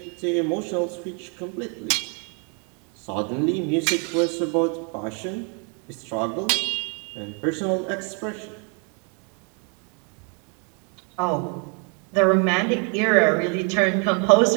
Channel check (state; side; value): quieter; left; 37.3 dB